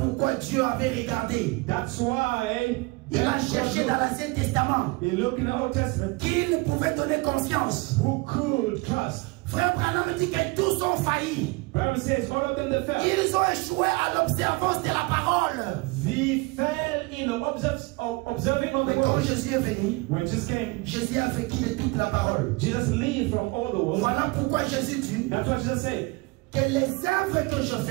Dieu avait regardé. That's why Il a cherché dans l'Ancien Testament he looked in the Old Testament qui ne pouvait donner confiance. who could trust. Frère Branham dit que tous ont failli. Bible says all of them that fell. Ils ont échoué à l'observance de la parole. They fell in the observing of the Mais quand word. Jésus est venu, When Jesus came, Jésus a vécu de toute la parole. Jesus lived from all the world. Voilà pourquoi Jésus dit That's what Jesus said. que les œuvres que je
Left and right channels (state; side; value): quieter; left; 25.6 dB